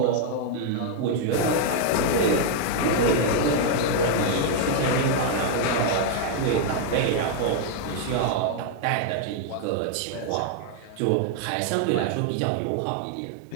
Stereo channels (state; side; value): different; both; correlation 0.00